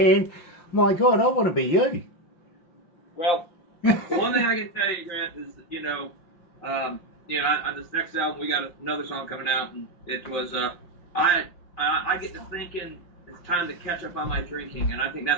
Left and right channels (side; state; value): right; late; 5.7 ms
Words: My God, I want to be you. Well, one thing I can tell you, Grant, is on this next album we got another song coming out, and it was I get to thinking it's time to catch up on my drinking, and I think